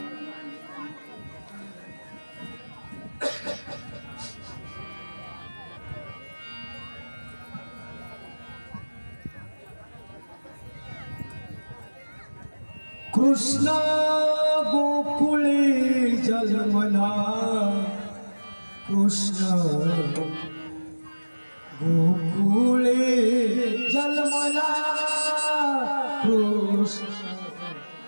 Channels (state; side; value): inverted; both; correlation -1.00